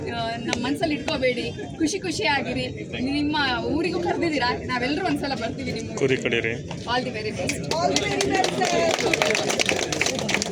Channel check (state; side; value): identical; both; correlation 1.00